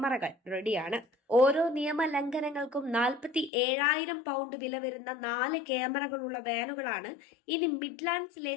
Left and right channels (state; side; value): drops out; right; at 3.5 s